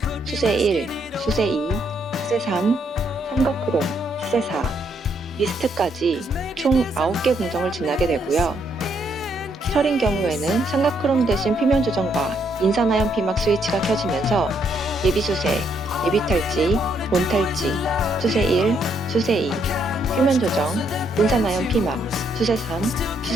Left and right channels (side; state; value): both; normal; correlation 0.73